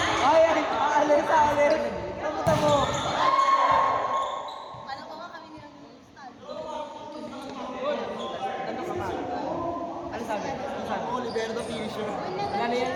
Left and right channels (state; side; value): identical; both; correlation 1.00